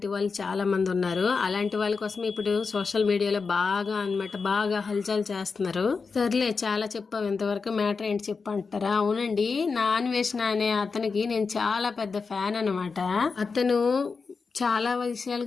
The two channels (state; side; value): quieter; right; 4.8 dB